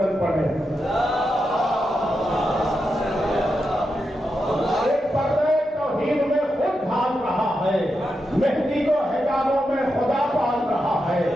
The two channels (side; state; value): both; normal; correlation 0.87